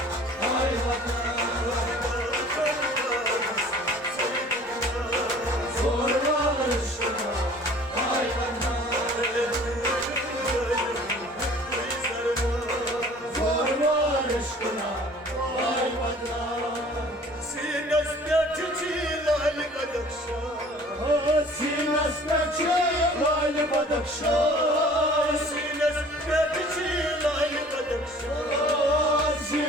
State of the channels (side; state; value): both; normal; correlation 0.49